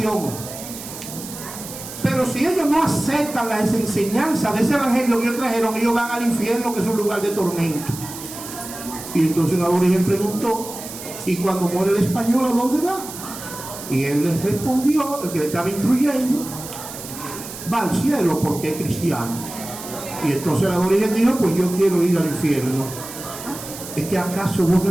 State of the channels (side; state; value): right; noise; hiss, 12 dB below the sound